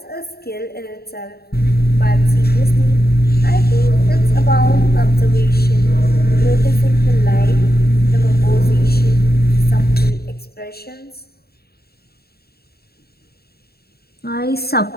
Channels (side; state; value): right; late; 0.46 ms